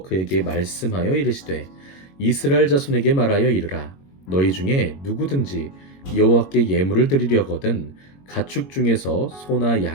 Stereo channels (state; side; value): late; right; 22 ms